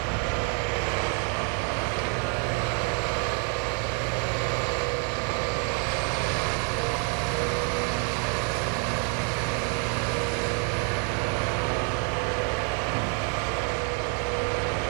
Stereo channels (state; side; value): quieter; left; 39.8 dB